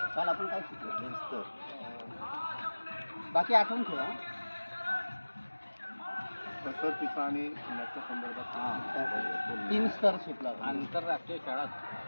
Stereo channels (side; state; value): both; inverted; correlation -1.00